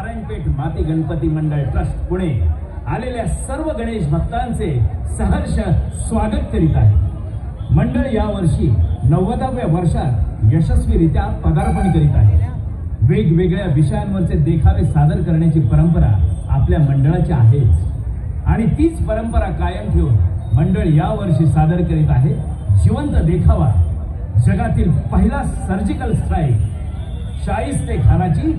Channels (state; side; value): identical; both; correlation 1.00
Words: माती गणपती मंडळ ट्रस्ट पुणे आलेल्या सर्व गणेश भक्तांचे सहर्ष स्वागत करीत आहे. मंडळ यावर्षी 90व्या वर्षात यशस्वीरित्या पदार्पण करीत आहे. वेगवेगळ्या विषयांवरचे देखावे सादर करण्याची परंपरा आपल्या मंडळाची आहेच आणि तीच परंपरा कायम ठेवून मंडळ यावर्षी सादर करीत आहे जिवंत देखावा, जगातील पहिला सर्जिकल स्ट्राईक, शाहिस्ते खानाची